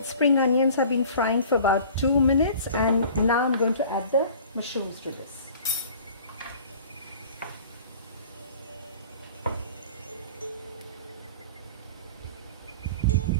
spring onions have been frying for about 2 minutes, and now I'm going to add the mushrooms to this.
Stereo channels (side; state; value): both; inverted; correlation -0.46